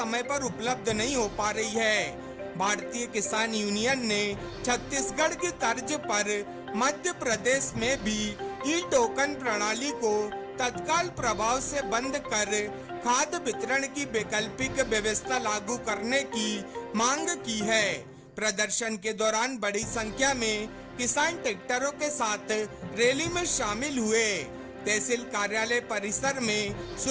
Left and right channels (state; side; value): identical; both; correlation 1.00